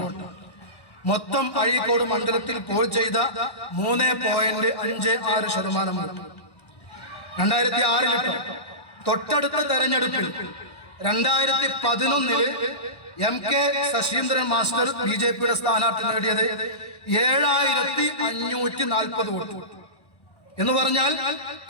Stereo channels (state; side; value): late; right; 1.1 ms